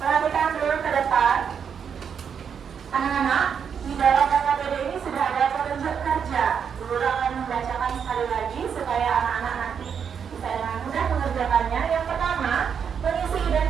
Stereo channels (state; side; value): quieter; left; 7.2 dB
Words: dulu ke depan. Anak-anak, di dalam LKPD ini sudah ada petunjuk kerja. Bu Guru akan membacakan sekali lagi supaya anak-anak nanti bisa dengan mudah mengerjakannya. Yang pertama, mengisi